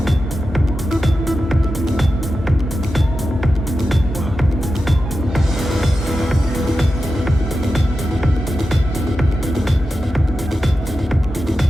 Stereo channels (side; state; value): both; normal; correlation 0.91